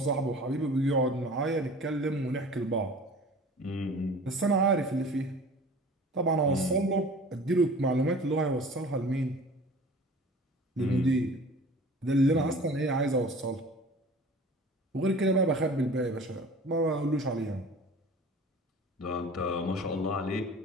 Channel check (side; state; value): both; normal; correlation 0.43